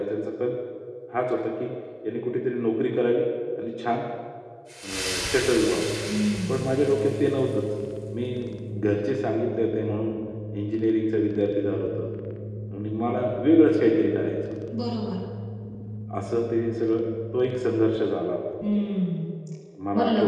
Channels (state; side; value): identical; both; correlation 1.00